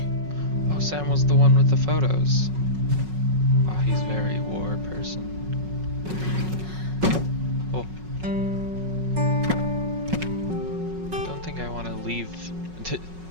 Oh, Sam was the one with the photos. Oh, he's very war person. Oh. Don't think I want to leave.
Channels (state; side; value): late; left; 5.4 ms